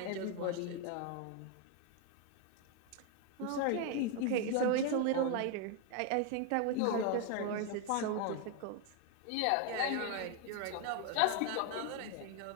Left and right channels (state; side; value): different; both; correlation 0.01